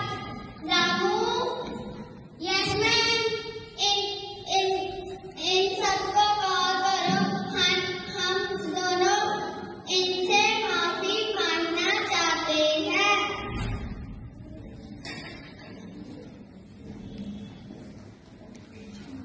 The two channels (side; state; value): both; identical; correlation 1.00